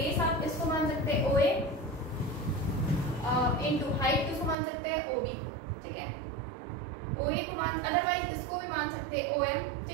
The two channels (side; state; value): left; drops out; at 4.5 s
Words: आप इसको मान सकते हैं OA इंटू हाइट किसको मान सकते हैं, OB को, ठीक है। OA को मान, अदरवाइज इसको भी मान सकते हैं OM,